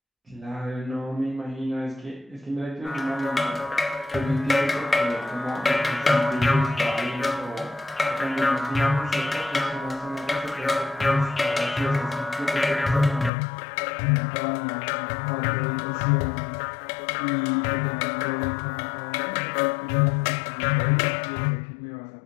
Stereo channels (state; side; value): drops out; right; at 13.3 s